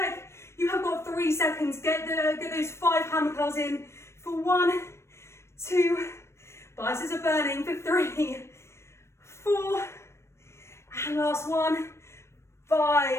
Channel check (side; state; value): right; late; 0.13 ms